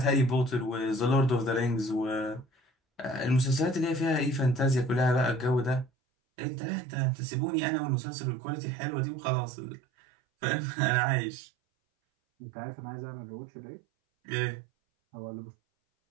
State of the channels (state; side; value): drops out; left; at 5.9 s